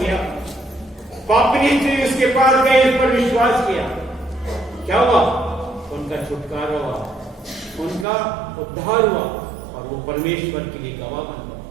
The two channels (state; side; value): drops out; left; at 8.1 s